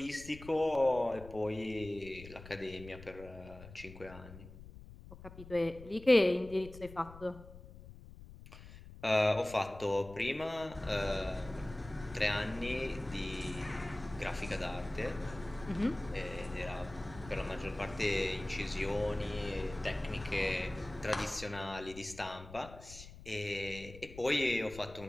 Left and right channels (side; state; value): left; noise; rumble, 16 dB below the sound